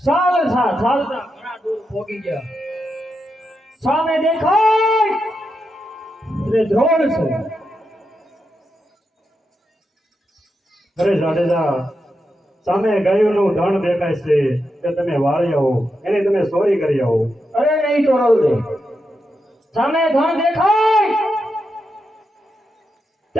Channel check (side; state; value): both; normal; correlation 0.86